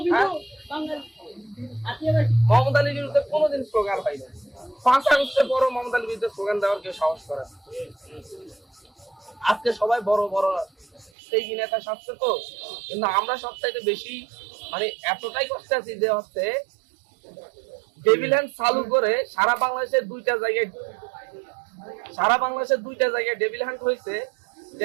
মোহাম্মদ আলীর বিরুদ্ধে কোনোদিন স্লোগান হয়নি। 5 আগস্টের পরও মোহাম্মদ আলীর বিরুদ্ধে স্লোগান দেওয়ার কেউ সাহস করে। আজকে সবাই বড় বড় সেই নেতা সাজছে তো, কিন্তু আমরা সবচাইতে বেশি মানে এতটাই কষ্টে আছি যে হচ্ছে ডেভিল হ্যান্ড চালু করে সারা বাংলাদেশের 2টা জায়গায় ডেভিল হ্যান্ড হয়েছে,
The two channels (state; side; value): drops out; left; at 11.1 s